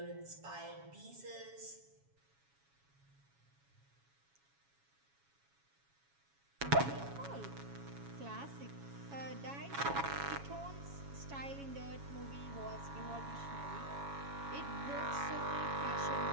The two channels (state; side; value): late; left; 7.2 ms